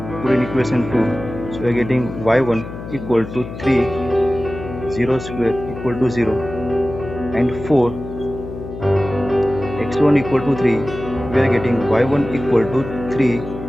Put in equation 2, so we are getting y1 equal to 3, 0 square equal to 0, and for x1 equal to 3, we are getting y1 equal to 3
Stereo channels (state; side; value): noise; left; hum, 10 dB below the sound